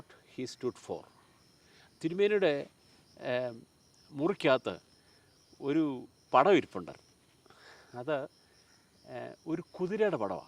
he stood for. തിരുമേനിയുടെ മുറിക്കകത്ത് ഒരു പടം ഇരിപ്പുണ്ടായിരുന്നു. അത് ഒരു കുതിരയുടെ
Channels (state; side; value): identical; both; correlation 1.00